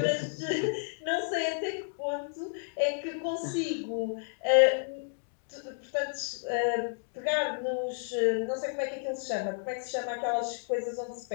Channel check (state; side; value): silent; right; digital silence